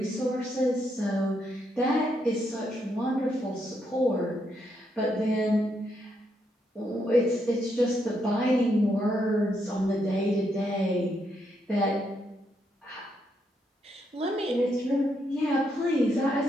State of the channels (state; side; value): normal; both; correlation 0.78